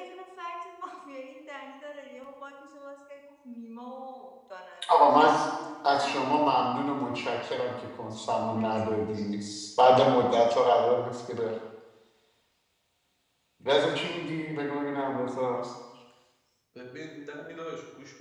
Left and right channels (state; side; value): identical; both; correlation 1.00